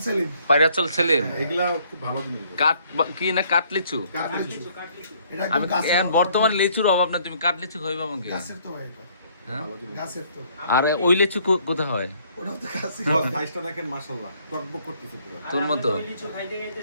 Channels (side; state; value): both; inverted; correlation -0.64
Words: সেলিম, পায়রাচল সেলিম। এগুলা খুব ভালো জিনিস। কাঠ কি না, কাঠ লিচু? আমি এখন বর্তমানে লিচুর অভাব না, তুমি কাঠ লিচু খাইবা আমাকে? হ্যাঁ? আর ওই লিচু কোথায় হয়? সাইজটা দেখেন মাশাআল্লাহ, টকবক করতেছে পুরো। তোর মতো